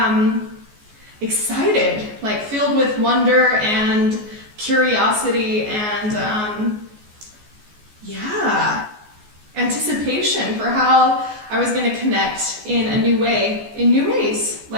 excited, filled with wonder and curiosity and anticipation for how I was going to connect in a new way, in new ways.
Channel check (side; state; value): left; late; 14 ms